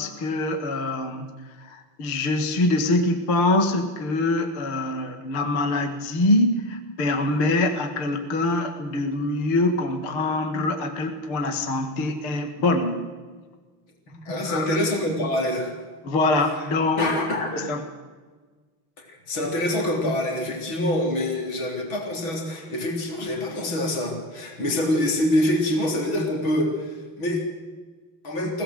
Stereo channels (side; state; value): right; late; 6.2 ms